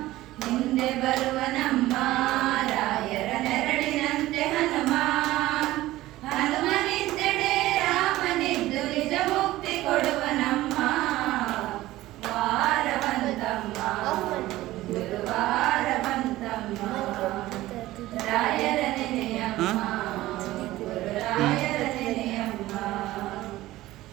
ಮುಂದೆ ಬರುವನಮ್ಮ ರಾಯರ ನೆರಳಿನಂತೆ ಹನುಮ. ಹನುಮನಿದ್ದೆಡೆ ರಾಮನಿದ್ದು ನಿಜ ಮುಕ್ತಿ ಕೊಡುವನಮ್ಮ. ವಾರ ಬಂತಮ್ಮ ಗುರುವಾರ ಬಂತಮ್ಮ. ರಾಯರ ನೆನೆಯಮ್ಮ ಗುರುರಾಯರ ನೆನೆಯಮ್ಮ.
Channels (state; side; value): quieter; left; 16.6 dB